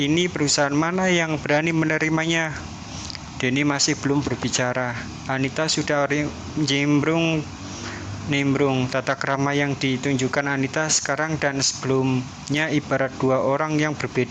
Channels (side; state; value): both; identical; correlation 1.00